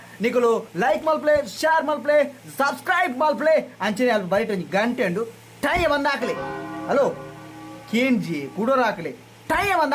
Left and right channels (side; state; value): both; identical; correlation 1.00